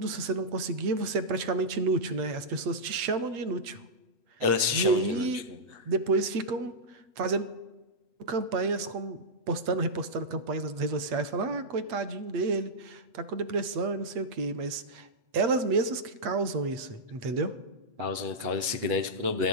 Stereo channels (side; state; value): left; late; 8.2 ms